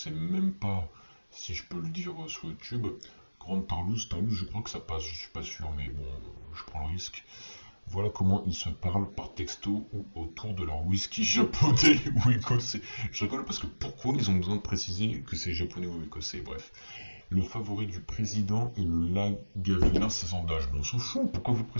même pas si je peux le dire sur YouTube. Grande Tarlouse, je crois que ça passe, je suis pas sûr, mais bon, je prends le risque. Voilà comment ils se parlent par texto ou autour de leur whisky japonais ou écossais. Je rigole parce que pourquoi ils ont besoin de préciser que c'est japonais ou écossais, bref. Le favori du président est le Lagavulin 16 ans d'âge. Bon, on s'en fout, pourquoi vous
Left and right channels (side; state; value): both; inverted; correlation -1.00